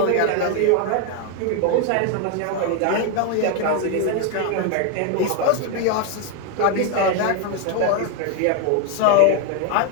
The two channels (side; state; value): both; different; correlation 0.01